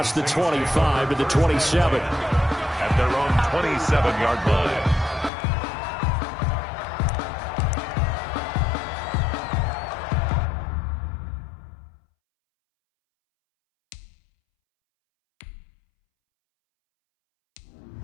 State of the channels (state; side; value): drops out; right; at 5.3 s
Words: the 25 to the 27. At their own 27-yard line.